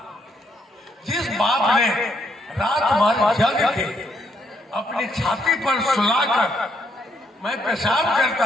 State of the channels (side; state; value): both; normal; correlation 0.74